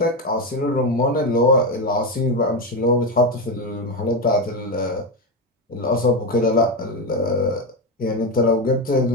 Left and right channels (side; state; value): both; normal; correlation 0.12